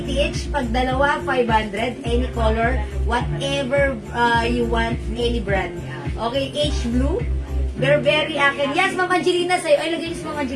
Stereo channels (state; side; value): identical; both; correlation 1.00